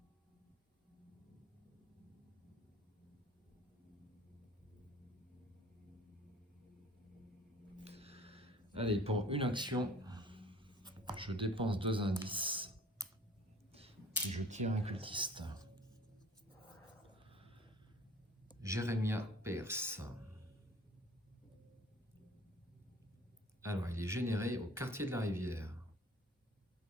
Allez, pour une action, je dépense 2 indices et je tire un cultiste. Jérémia Pierce. Alors, il est généré au quartier de la Rivière.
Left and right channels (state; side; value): normal; both; correlation 0.49